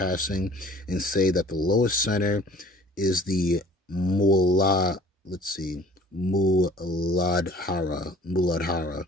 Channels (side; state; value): both; normal; correlation 0.50